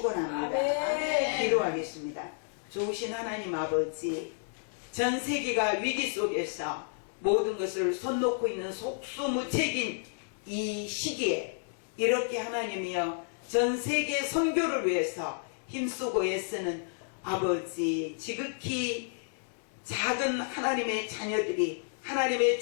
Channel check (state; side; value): silent; right; digital silence